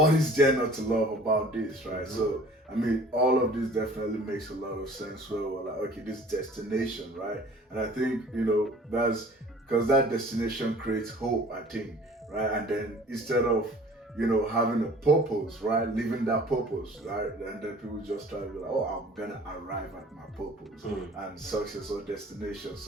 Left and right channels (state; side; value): normal; both; correlation 0.48